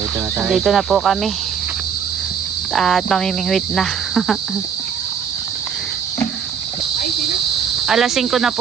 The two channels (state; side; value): quieter; left; 7.3 dB